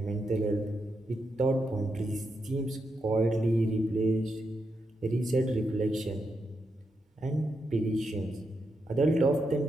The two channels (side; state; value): both; normal; correlation 0.84